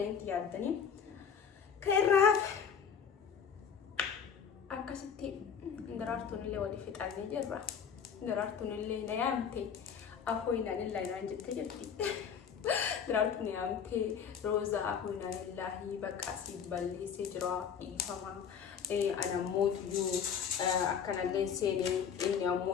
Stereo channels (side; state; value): right; quieter; 7.3 dB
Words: yaaddanii kairraaf akkasitti daraartuun illee wali fixannee jirra daraartuun illee na yaamte afooyinaan illaa naan jette jirti daraartuun yaamte roozaa afooyinaan illaahi bakka asii balleessee jira dhiifama ana mootuyyuu akkanallee seenee inni